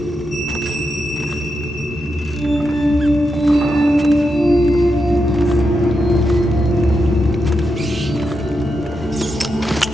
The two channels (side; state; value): left; noise; rumble, 30 dB below the sound